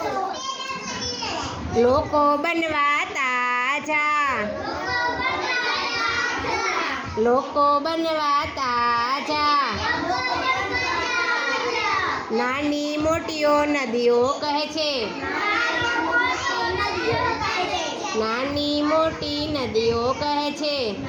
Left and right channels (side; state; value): both; identical; correlation 1.00